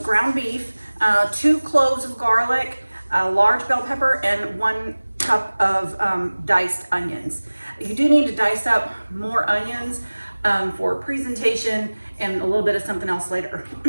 ground beef, 2 cloves of garlic, a large bell pepper, and 1 cup of diced onions. You do need to dice up more onions for presentation and a little bit of something else later.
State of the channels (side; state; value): both; inverted; correlation -1.00